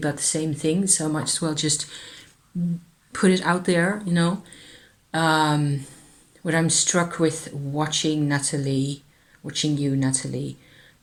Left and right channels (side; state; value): both; identical; correlation 1.00